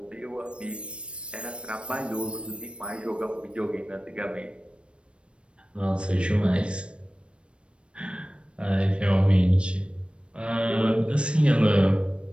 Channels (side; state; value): left; late; 0.058 ms